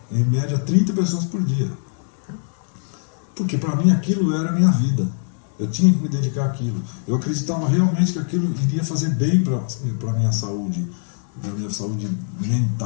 em média 30 pessoas por dia. Porque para mim aquilo era a minha vida. Eu tinha que me dedicar àquilo. Eu acreditava realmente que aquilo iria fazer bem para a minha saúde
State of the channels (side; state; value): right; silent; 64 dB below the other